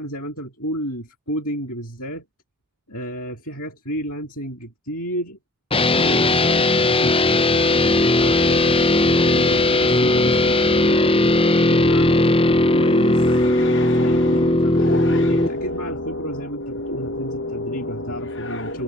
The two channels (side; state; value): both; normal; correlation 0.55